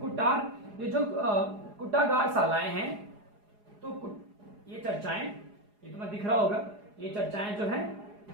कुटार, ये जो कुटागार शालाएं हैं, तो ये चर्चाएं, ये तुम्हें दिख रहा होगा, ये चर्चाएं जो है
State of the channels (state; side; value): late; left; 4.8 ms